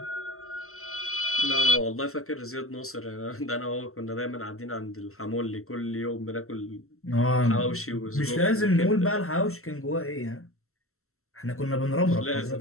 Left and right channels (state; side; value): late; right; 0.63 ms